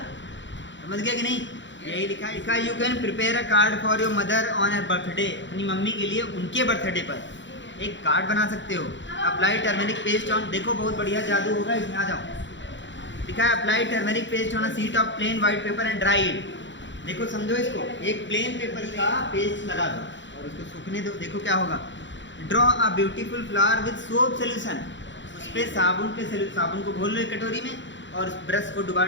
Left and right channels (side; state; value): right; late; 0.54 ms